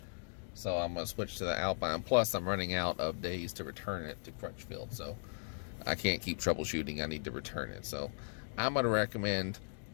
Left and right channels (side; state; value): right; silent; digital silence